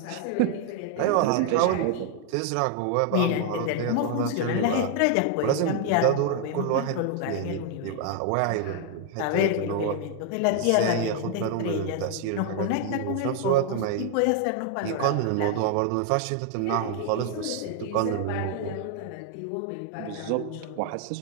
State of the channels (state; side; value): different; both; correlation 0.00